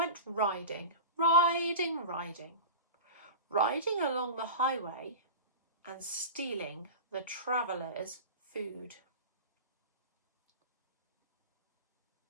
riding along the highway and stealing the travellers' food.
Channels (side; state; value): both; inverted; correlation -0.30